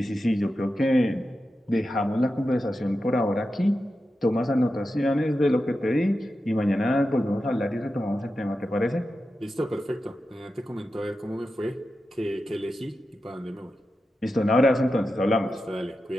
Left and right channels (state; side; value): normal; both; correlation 0.91